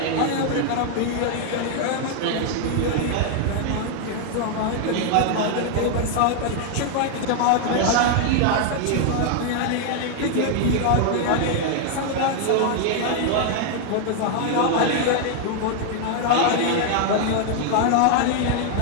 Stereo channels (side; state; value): both; different; correlation 0.00